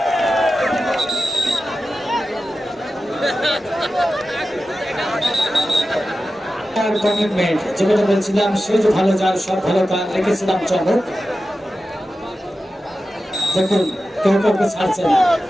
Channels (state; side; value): normal; both; correlation 0.93